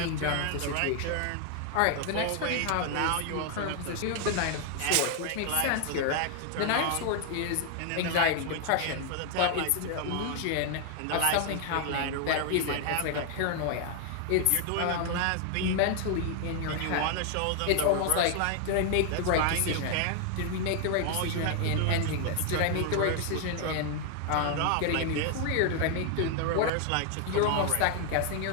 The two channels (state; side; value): different; both; correlation 0.00